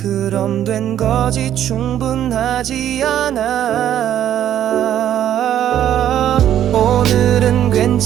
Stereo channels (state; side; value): quieter; left; 10.9 dB